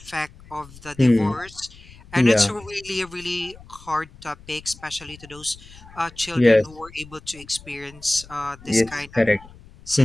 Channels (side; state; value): left; noise; rumble, 21 dB below the sound